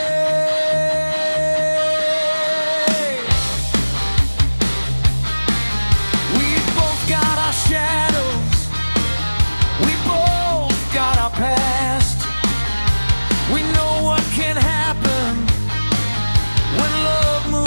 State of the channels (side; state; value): both; inverted; correlation -1.00